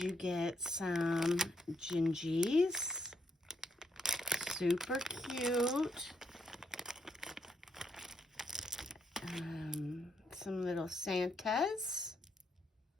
you get some gingies. Super cute. Some little Santas.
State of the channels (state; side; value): normal; both; correlation 0.77